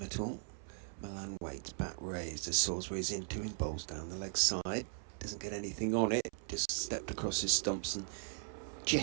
at all. Milan waits, bat raised as Salisbury's into him, bowls down the leg side. Doesn't get anything on it, just stepped across his stumps and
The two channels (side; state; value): left; silent; 52 dB below the other